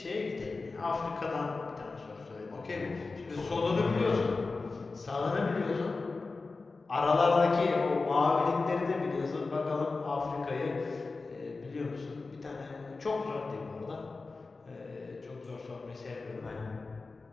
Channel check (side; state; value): right; quieter; 3.9 dB